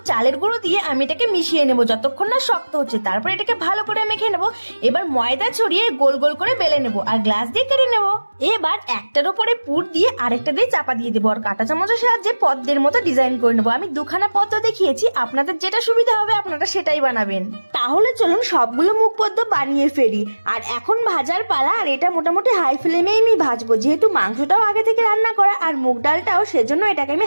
চালের গুঁড়ো দিয়ে আমি এটাকে মিশিয়ে নেবো যতক্ষণ না শক্ত হচ্ছে। তারপর এটাকে ভালো করে মেখে নেবো। এবার ময়দা ছড়িয়ে গোল গোল করে বেলে নেবো আর গ্লাস দিয়ে কেটে নেবো। এবার একটার উপরে পুর দিয়ে আরেকটা দিয়ে চাপা দিয়ে দেবো আর কাঁটা চামচের সাহায্যে পদ্মের মতো ডিজাইন করে নেবো। আমি দুখানা পদ্ম দেখিয়েছি, আপনাদের যেটা সুবিধা হবে আপনারা সেটাই বানাবেন। তাহলে চলুন সবগুলো মুগ পদ্ম বানিয়ে ফেলি। আর এখন ভাজার পালা, আর এটা মোটামুটি হাই ফ্লেমে আমি ভাজবো, যেহেতু মাংসটাও আগে থেকে রান্না করা আর মুগ ডালটাও, সেজন্য এটাকে আমি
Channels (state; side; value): inverted; both; correlation -1.00